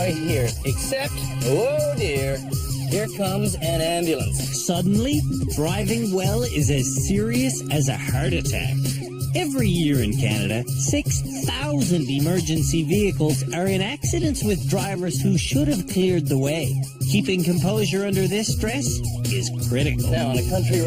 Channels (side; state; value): both; identical; correlation 1.00